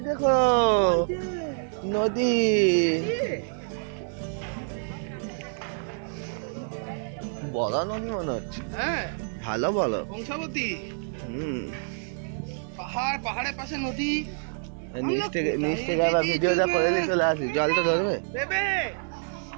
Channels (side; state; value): left; silent; digital silence